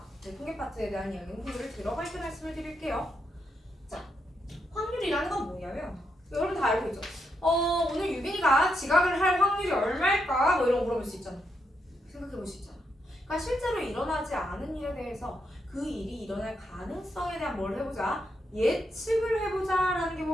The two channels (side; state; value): both; normal; correlation 0.81